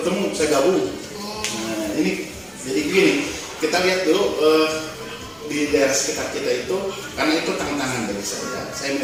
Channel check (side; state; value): both; identical; correlation 1.00